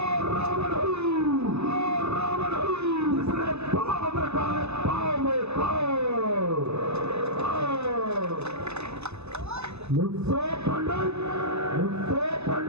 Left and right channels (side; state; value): left; late; 0.80 ms